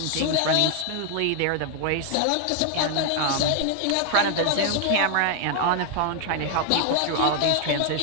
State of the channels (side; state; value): both; different; correlation 0.00